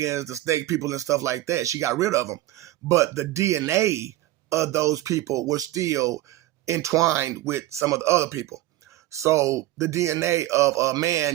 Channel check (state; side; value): quieter; left; 15.8 dB